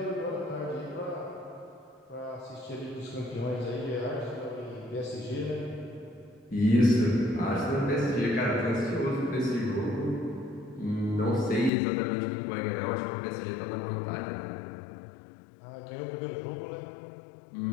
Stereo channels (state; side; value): drops out; right; at 11.7 s